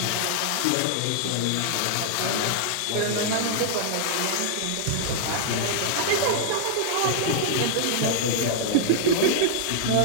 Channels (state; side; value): different; both; correlation -0.01